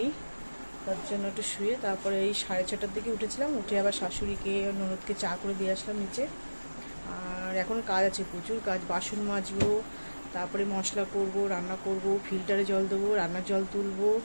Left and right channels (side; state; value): both; inverted; correlation -1.00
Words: তার জন্য একটু শুয়ে তারপরে এই 6:30টার দিকে উঠেছিলাম। উঠে আবার শাশুড়িকে ননদকে চা করে দিয়ে আসলাম নিচে। আর এখন কাজ আছে, প্রচুর কাজ, বাসন মাজবো, তারপরে মশলা করব, রান্না করব, ফিল্টারে জল দেবো, রান্নার জল তুলবো,